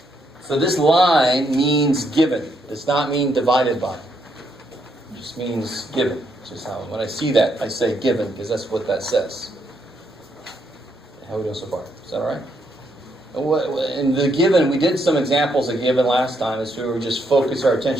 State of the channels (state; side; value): normal; both; correlation 0.76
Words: So this line means given. It does not mean divided by. It just means given. It's just how when I see that, I say given because that's what that says. How are we doing so far? Is that all right? In the given, we did some examples of given last time as we were just focus our